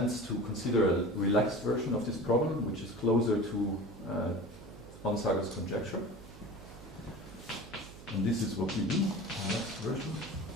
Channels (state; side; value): noise; right; hum, 17 dB below the sound